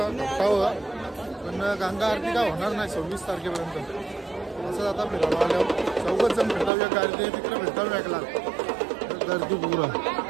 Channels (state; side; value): drops out; left; at 6.7 s